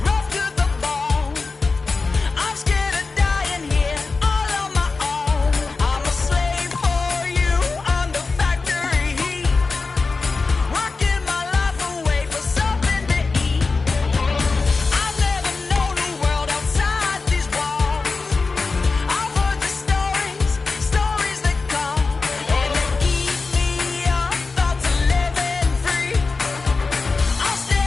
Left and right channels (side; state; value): right; quieter; 4.1 dB